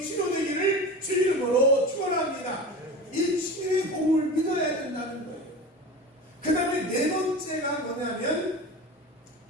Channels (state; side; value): normal; both; correlation 0.31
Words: 치료되기를 주 이름으로 축원합니다. 이 치유의 복음을 믿어야 된다는 거예요. 그 다음에 네 번째가 뭐냐면